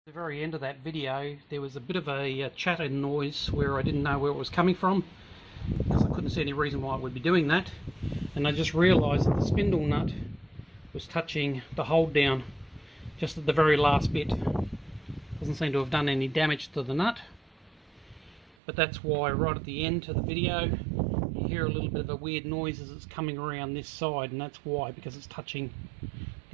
very end of that video, there was a bit of a chattering noise where I didn't know where it was coming from, because I couldn't see any reason why I would be doing that. And I just realised that the spindle nut was touching the hold down just at the very last bit. Doesn't seem to have done any damage to the nut, but that's why right at the end of the video you hear a little bit of a weird noise as it's coming around this side, and that's why, because it's touching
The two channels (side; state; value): left; drops out; at 18.6 s